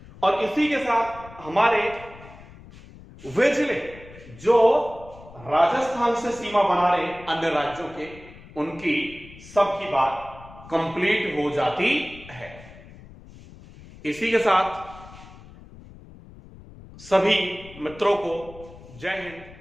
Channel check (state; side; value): noise; left; rumble, 19 dB below the sound